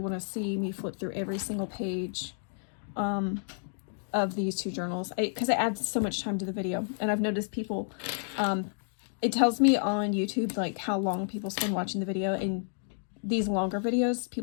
to see me flip through every single page of these 2 journals, because it adds so much time to the video. And I've noticed people, it tells me on YouTube like how long people spend watching the video, and these longer videos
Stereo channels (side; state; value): right; silent; digital silence